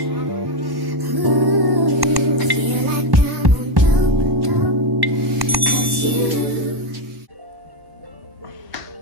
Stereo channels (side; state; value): left; late; 1.1 ms